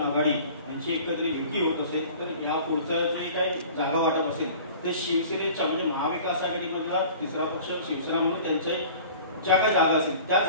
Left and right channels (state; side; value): inverted; both; correlation -0.44